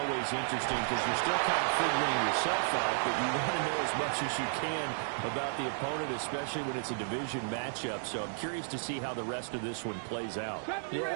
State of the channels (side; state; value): left; silent; digital silence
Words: interesting because you're still kind of figuring yourself out, but you want to know as much as you can about the opponent, especially when it's a division matchup. So I'm curious to see how the rest of this one plays out. Yeah,